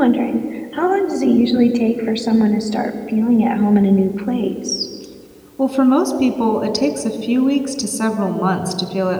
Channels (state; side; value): identical; both; correlation 1.00